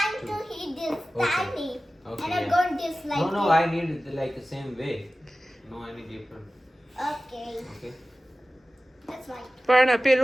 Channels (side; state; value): both; normal; correlation 0.96